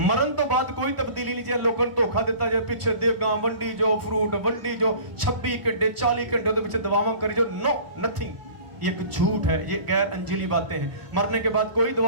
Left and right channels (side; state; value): left; late; 1.4 ms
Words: तो बाद कोई तब्दीली नहीं। जे लोगों ने धोखा दिता, जे पिछे देगा वंडी जो, फ्रूट वंडी जो, 26 घंटे 40 घंटे दे पिछे दवावां करी जो, नो नथिंग। ये एक झूठ है, ये गैर अंजीली बातें हैं। मरने के बाद कोई